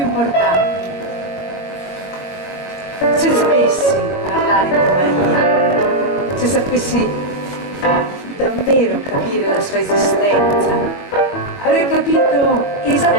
importanti. Se sapessi parlare di Maria, se sapessi davvero capire la sua esistenza, avrei capito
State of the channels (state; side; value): late; right; 22 ms